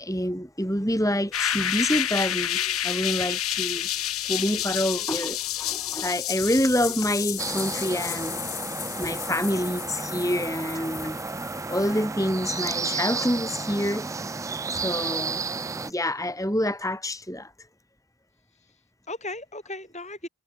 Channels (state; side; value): normal; both; correlation 0.62